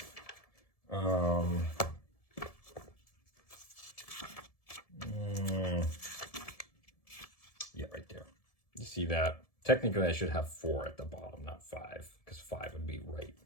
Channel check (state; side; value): late; right; 1.7 ms